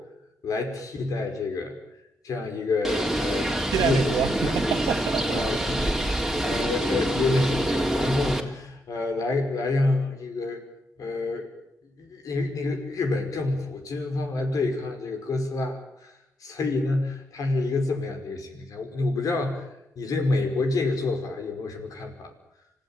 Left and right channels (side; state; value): both; normal; correlation 0.80